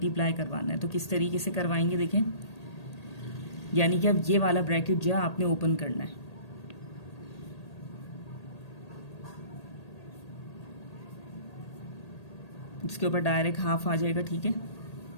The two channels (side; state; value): right; late; 1.8 ms